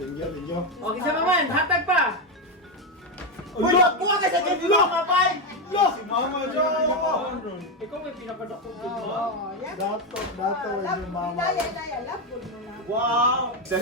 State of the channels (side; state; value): both; normal; correlation 0.08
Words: Okay, sa maman. Hatag pa. Uy, buka ka sa gift mo, kapay! Yo! Si Mama John! Ikaw may pinapadako ko. Oh, yan. Dato yung mama. Daya, love good mo na. Wow!